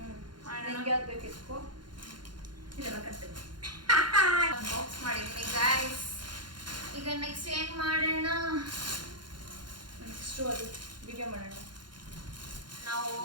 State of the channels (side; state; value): left; late; 0.71 ms